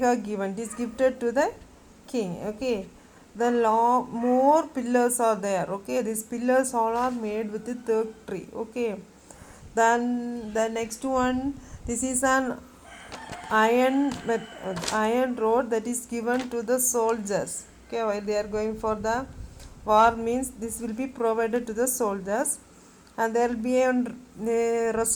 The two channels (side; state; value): both; identical; correlation 1.00